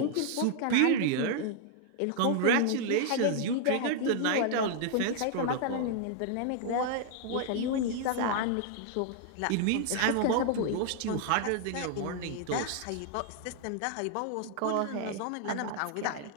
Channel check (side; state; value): both; different; correlation 0.00